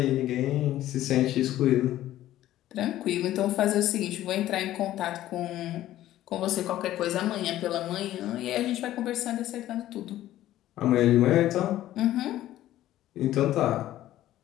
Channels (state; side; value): quieter; right; 13.8 dB